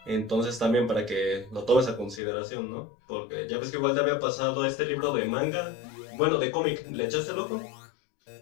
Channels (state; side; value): drops out; right; at 2.2 s